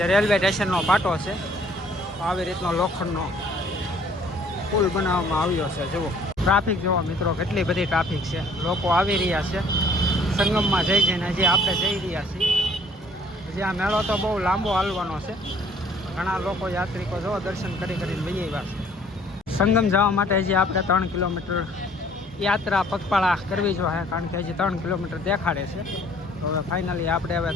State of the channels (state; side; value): normal; both; correlation 0.58